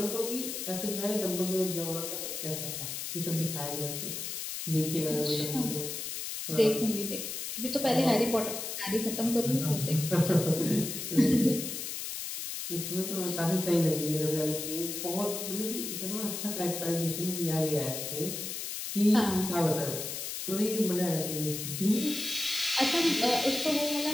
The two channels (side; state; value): left; noise; hiss, 5 dB below the sound